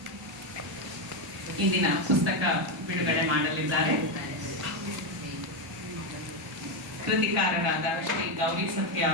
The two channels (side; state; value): both; normal; correlation 0.07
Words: ಇಂದಿನ ಪುಸ್ತಕ ಬಿಡುಗಡೆ ಮಾಡಲಿದ್ದಾರೆ. ಕೃತಿಕಾರರಾದ ಶ್ರೀ ಗೌರಿ ಸತ್ಯ